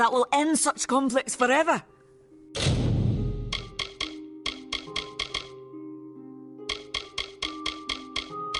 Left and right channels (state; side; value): identical; both; correlation 1.00